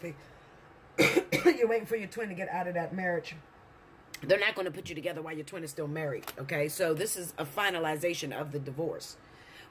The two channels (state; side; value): identical; both; correlation 1.00